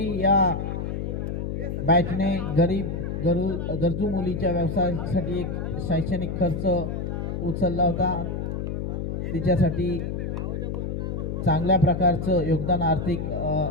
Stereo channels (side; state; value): left; noise; hum, 3 dB below the sound